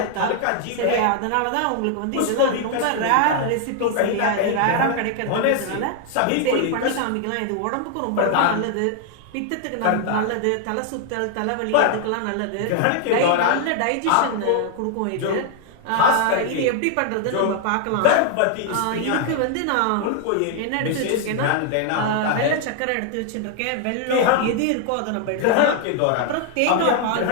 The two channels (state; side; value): different; both; correlation 0.00